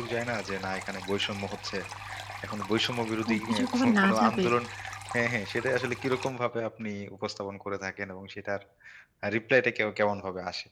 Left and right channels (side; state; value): both; identical; correlation 1.00